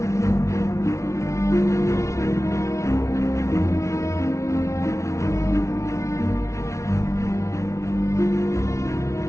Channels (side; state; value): right; late; 0.14 ms